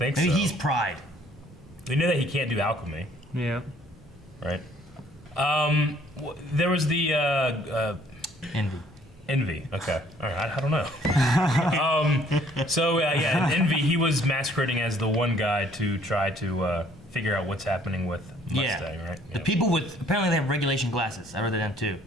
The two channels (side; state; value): both; normal; correlation 0.60